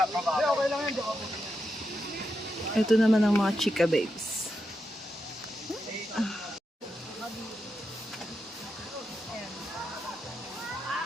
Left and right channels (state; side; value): normal; both; correlation 0.86